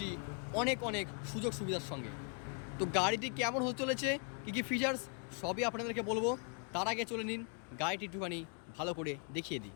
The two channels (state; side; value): quieter; right; 37.2 dB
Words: অনেক অনেক সুযোগ সুবিধার সঙ্গে। তো গাড়িটি কেমন হতে চলেছে, কী কী ফিচার্স, সবই আপনাদেরকে বলবো। তার আগে চলে নিন গাড়িটি একটুখানি ভালো করে দেখিয়ে দিই।